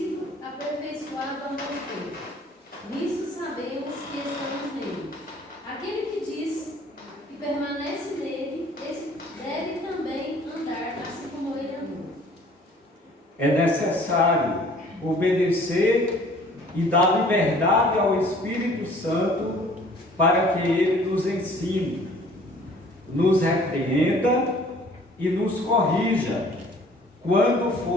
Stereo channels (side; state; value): both; normal; correlation 0.53